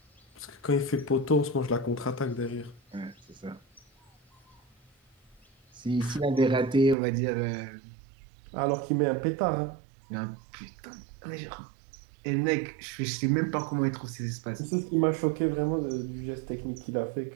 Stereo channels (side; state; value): left; drops out; at 7.0 s